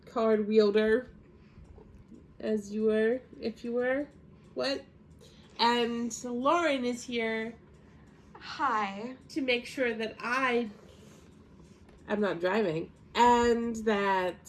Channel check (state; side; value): identical; both; correlation 1.00